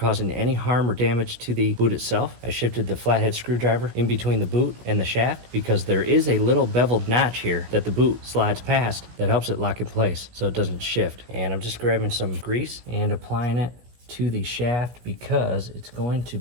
any harm or damage to the boot itself, I shifted the flathead screwdriver in between the boot and the shaft because there is a little beveled notch here that the boot slides past that helps it lock in place so it doesn't shift. And I'm just grabbing some grease and applying it to the shaft because it's going to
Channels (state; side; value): late; left; 17 ms